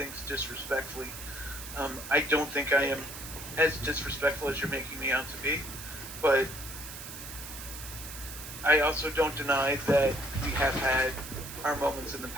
disrespectfully. I don't think I am as disrespectful as you're making me out to be, but I also don't deny that we have had our moments in the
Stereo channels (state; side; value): noise; right; hiss, 11 dB below the sound